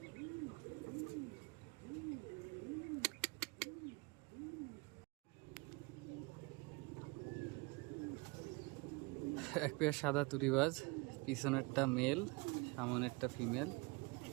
এক পেয়ার সাদা তুরিবাজ, পিছনেরটা মেল, সামনেরটা ফিমেল।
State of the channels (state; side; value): quieter; left; 27.0 dB